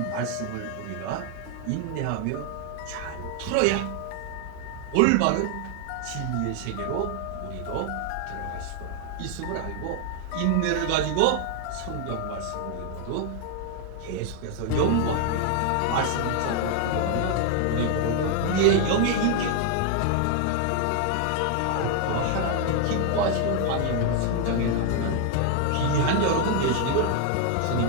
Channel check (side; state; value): both; different; correlation 0.00